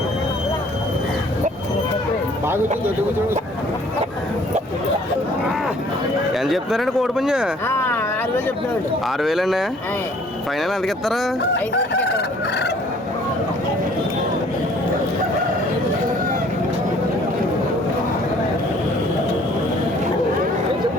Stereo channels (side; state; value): both; normal; correlation 0.57